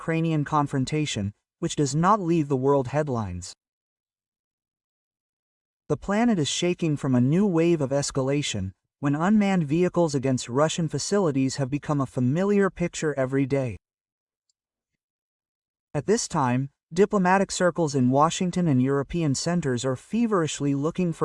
confrontation, which does not leave the world headlines. The planet is shaking from a new wave of escalation, when unmanned vehicles against Russian facilities have become a familiar picture every day. At this time, diplomatic circles in Washington and European centers are feverishly looking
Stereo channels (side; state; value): both; identical; correlation 1.00